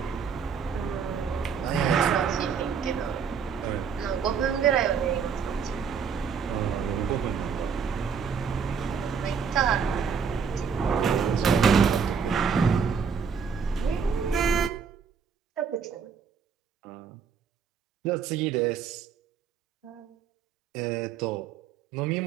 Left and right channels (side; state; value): left; quieter; 6.4 dB